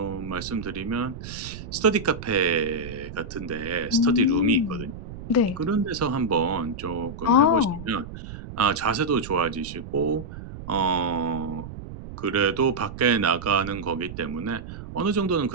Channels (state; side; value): noise; right; rumble, 11 dB below the sound